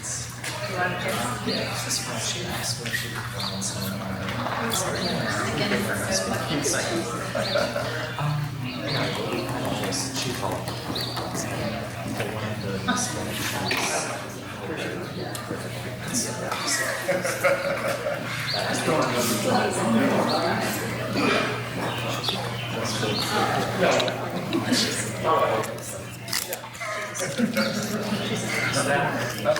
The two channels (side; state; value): both; identical; correlation 1.00